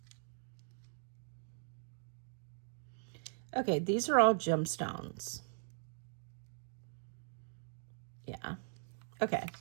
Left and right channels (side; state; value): left; silent; digital silence